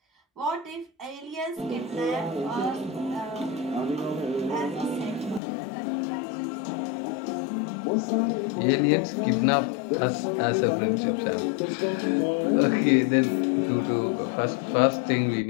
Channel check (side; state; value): right; drops out; at 5.4 s